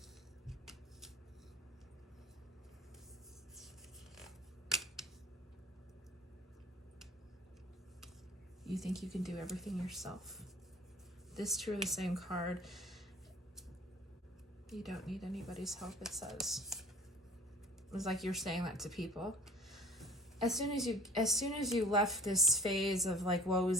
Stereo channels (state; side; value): normal; both; correlation 0.48